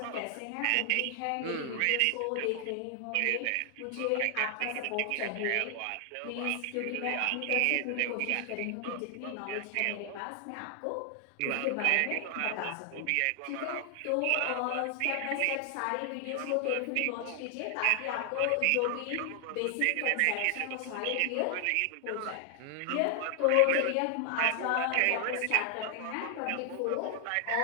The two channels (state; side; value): different; both; correlation 0.00